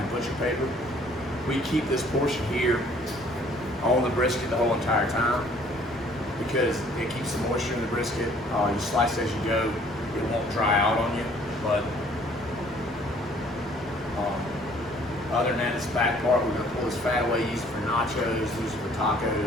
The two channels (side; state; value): both; normal; correlation 0.58